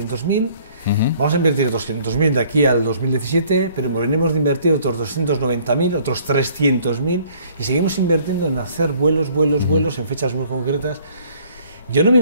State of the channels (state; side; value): inverted; both; correlation -0.58